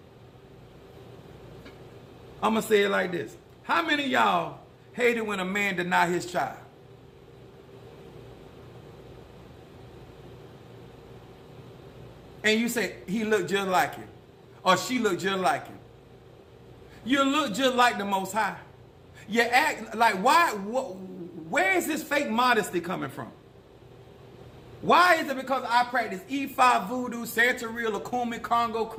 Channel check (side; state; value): both; identical; correlation 1.00